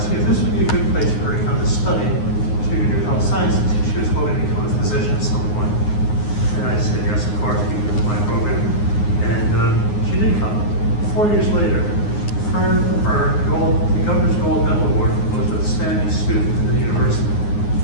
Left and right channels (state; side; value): late; right; 9.6 ms